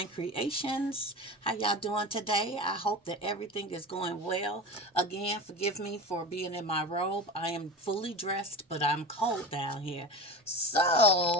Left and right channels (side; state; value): both; normal; correlation 0.31